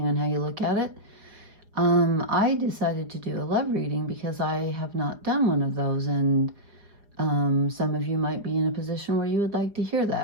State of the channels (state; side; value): late; left; 4.9 ms